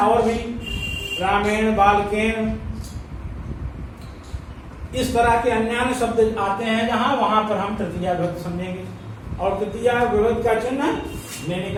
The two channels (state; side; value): identical; both; correlation 1.00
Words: भी रामेण, बालकेन, इस तरह के अन्य शब्द आते हैं जहां, वहां पर हम तृतीया विभक्ति समझेंगे, और तृतीया विभक्ति का चिन्ह ने